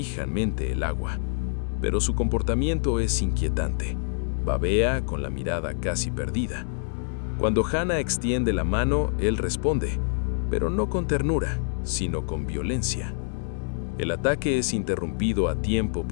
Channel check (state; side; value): silent; right; digital silence